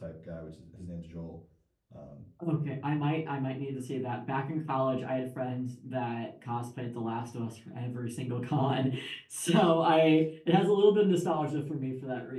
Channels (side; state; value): both; identical; correlation 1.00